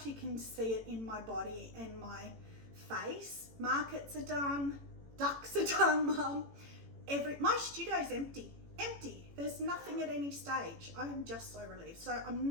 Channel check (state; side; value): late; left; 18 ms